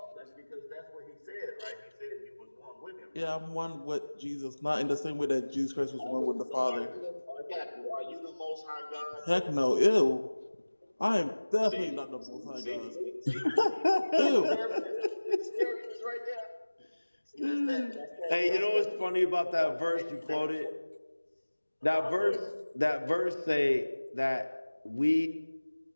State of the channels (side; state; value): both; inverted; correlation -1.00